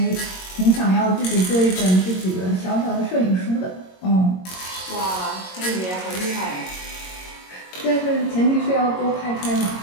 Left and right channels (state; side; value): late; right; 22 ms